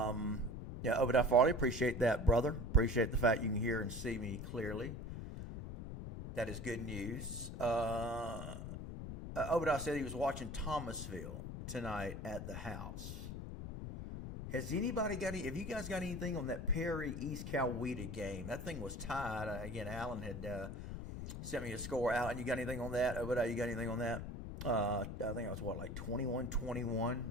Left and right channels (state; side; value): noise; left; rumble, 7 dB below the sound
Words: Obadiah Farley, appreciate that, brother. Appreciate the fact you can hear and see me clearly. That is good news. Obadiah said he was watching Thomasville tonight at the house. Has anybody got any? Have you guys got anything on that Perry East Coweta game? That thing was tied. Again, Alan had sent me a score. Alan, you got anything on that? Obadiah, you got anything on that? I think it was like 21-21,